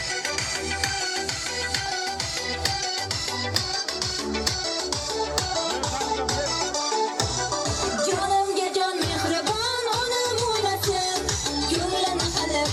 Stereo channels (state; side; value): identical; both; correlation 1.00